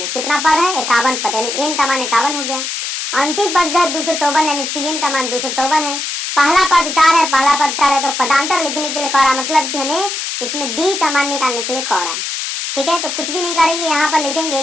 कितना पद है 51 पद, यानी n का मान 51 हो गया, अंतिम पद जो है 254 यानी tn का मान 254 है, पहला पद 4 है, पहला पद 4 है, तो पदांतर लिखने के लिए कह रहा, मतलब कि हमें इसमें d का मान निकालने के लिए कह रहा है। ठीक है, तो कुछ भी नहीं करेंगे, यहाँ पर लिखेंगे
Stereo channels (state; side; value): noise; left; hiss, 4 dB below the sound